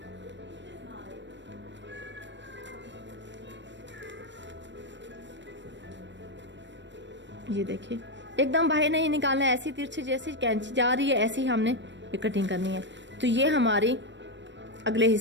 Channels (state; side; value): late; left; 0.53 ms